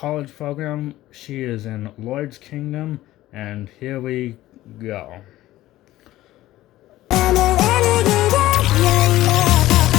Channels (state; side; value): quieter; right; 15.7 dB